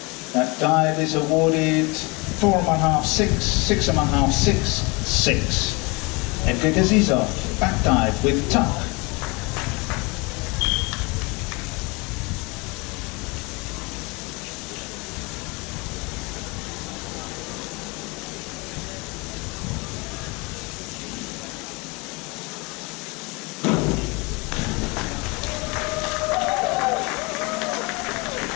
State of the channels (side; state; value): right; quieter; 27.5 dB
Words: That dive is awarded 4.5, 6, 6.5, 6, 6. Edgar Gazizov, back dive with tuck.